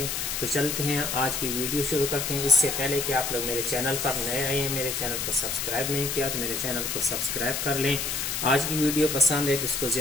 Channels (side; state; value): left; noise; hiss, 2 dB below the sound